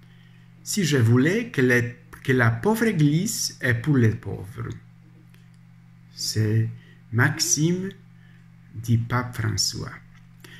Si je voulais que la pauvre Église est pour les pauvres. C'est Maxime du pape François.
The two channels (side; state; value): both; identical; correlation 1.00